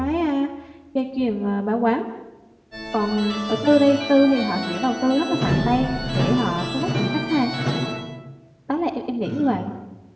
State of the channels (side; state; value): both; identical; correlation 1.00